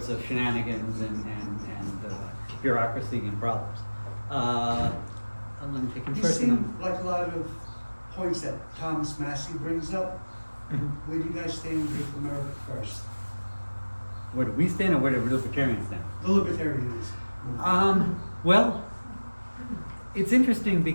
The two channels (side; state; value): both; inverted; correlation -1.00